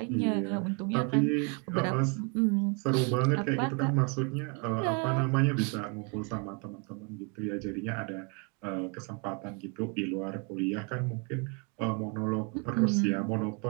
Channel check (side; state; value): left; quieter; 33.5 dB